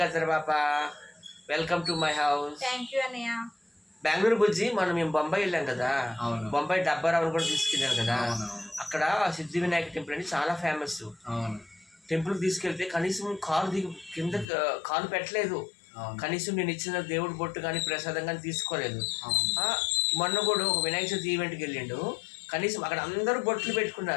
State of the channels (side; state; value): right; drops out; at 14.5 s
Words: Katar Papa. Welcome to my house. Thank you, Anaya. Bengaluru బుజ్జి మేము బొంబాయి వెళ్ళాం కదా. బొంబాయి డబ్బారావుని కూడా తీసుకెళ్ళాను కదా. అక్కడ సిద్ధి Vinayaka temple అని చాలా ఫేమస్. టెంపుల్ తీసుకెళ్తే కనీసం కింద కాలు పెట్టలేదు. కనీసం నేను ఇచ్చిన దేవుడి బొట్టు కానీ ప్రసాదం కానీ తీసుకోలేదు. మొన్న కూడా ఒక వినాయక చవితి ఈవెంట్కి వెళ్ళిండు. కనీసం అక్కడ అందరూ బొట్లు